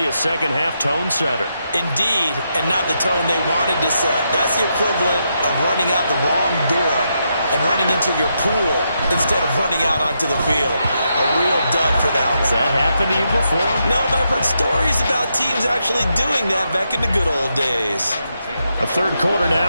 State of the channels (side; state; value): both; inverted; correlation -0.82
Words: a second-half tone setter. Indeed, and not the tone they wanted to set. That's the equivalent of running out the wrong door and running into your pool instead of running out onto the field. A real dud for that one. Has that happened to you before? No, but I've heard stories about teams actually doing that back in the good old days. A third quarter